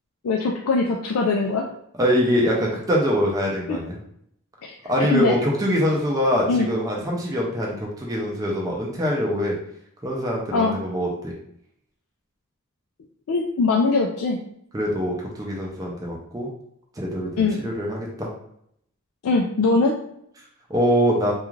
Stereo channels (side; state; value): both; normal; correlation 0.32